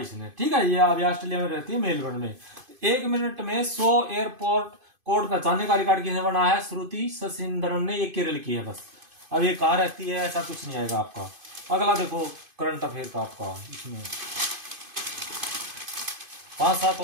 इसने। ठीक है, ये अभी ऑस्ट्रेलिया में रहती है मेलबर्न में। 1 मिनट में 100 एयरपोर्ट कोड पहचानने का रिकॉर्ड किसने बनाया है, श्रुति शशिंद्रन ने। ये केरल की है बस। अब ये कहाँ रहती है ऐसा कुछ नहीं आएगा आपका। अगला देखो करंट अफेयर का आपका, इसमें 5-7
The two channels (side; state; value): left; late; 2.5 ms